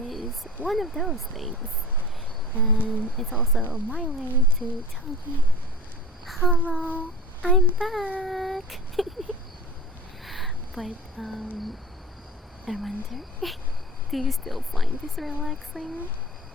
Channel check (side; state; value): both; normal; correlation 0.37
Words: one of those things. And it's also my way to tell you, hello, I'm back. But I wonder, do you still find this relaxing?